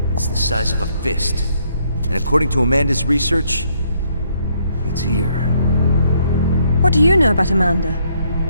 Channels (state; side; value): inverted; both; correlation -0.70